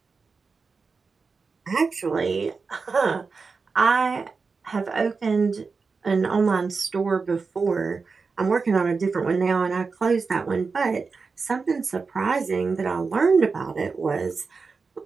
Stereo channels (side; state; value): left; quieter; 4.7 dB